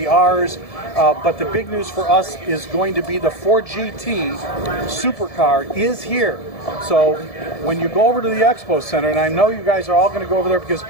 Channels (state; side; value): late; right; 1.7 ms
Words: but the big news for us is going to be the Ford GT supercar is here. So when you go over to the Expo Center, and I know you guys are all going to go over there because